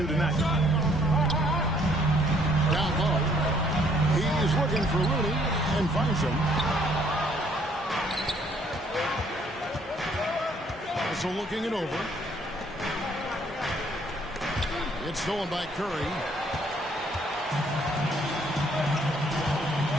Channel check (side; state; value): both; normal; correlation 0.64